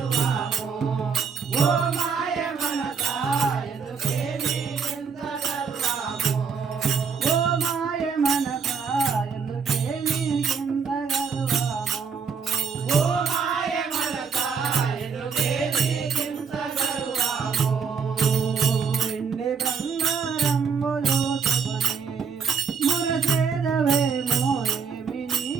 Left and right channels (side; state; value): left; quieter; 6.0 dB